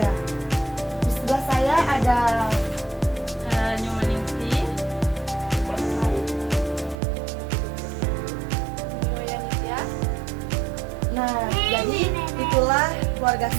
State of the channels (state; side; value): drops out; left; at 7.0 s